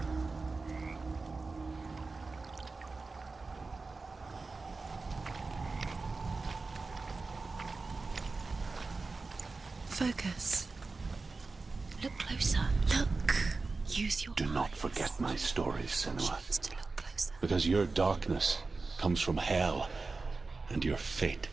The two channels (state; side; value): quieter; left; 3.9 dB